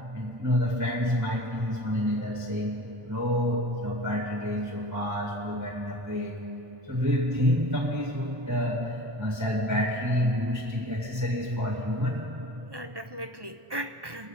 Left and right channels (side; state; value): left; late; 1.2 ms